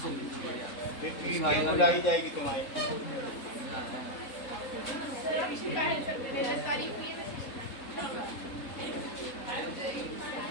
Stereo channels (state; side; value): late; right; 3.7 ms